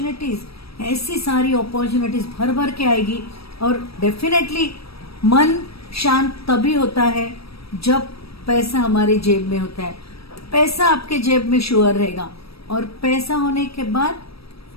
ऐसी सारी अपॉर्चुनिटीज भर भर के आएगी। और डेफिनेटली मन शांत तभी होता है जब पैसा हमारे जेब में होता है। पैसा आपके जेब में श्योर रहेगा, और पैसा होने के बाद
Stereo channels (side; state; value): right; late; 0.76 ms